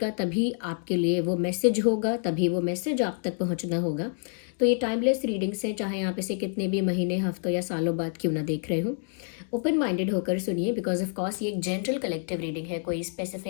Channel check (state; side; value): silent; right; 60 dB below the other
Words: तभी आपके लिए वो मैसेज होगा, तभी वो मैसेज आप तक पहुंचना होगा। तो ये टाइमलेस रीडिंग्स हैं, चाहे आप इसे कितने भी महीने, हफ्तों या सालों बाद क्यों ना देख रहे हो। ओपन माइंडेड होकर सुनिए, बिकॉज ऑफ कोर्स ये एक जनरल कलेक्टिव रीडिंग है, कोई